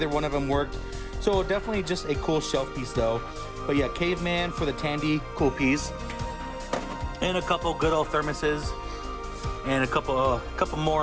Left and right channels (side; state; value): both; identical; correlation 1.00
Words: one of them worked. So definitely just a cool shelf piece though. But yeah, Caveman for the Tandy, cool piece. And a couple good old thermoses. And a couple